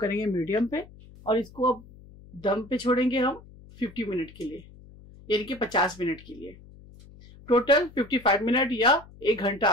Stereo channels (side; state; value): left; noise; hum, 21 dB below the sound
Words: मीडियम पे और इसको अब दम पे छोड़ेंगे हम 50 मिनट के लिए, यानी कि 50 मिनट के लिए। टोटल 55 मिनट या 1 घंटा